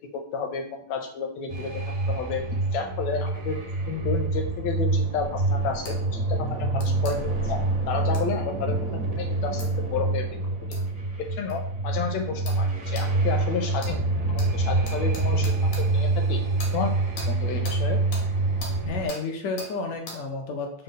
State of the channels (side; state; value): right; late; 8.7 ms